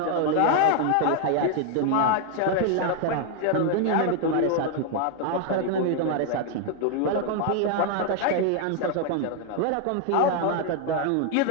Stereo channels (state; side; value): different; both; correlation 0.00